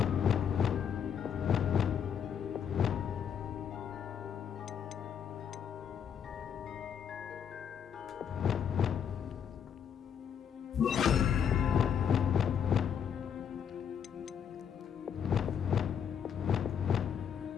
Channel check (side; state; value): right; quieter; 8.1 dB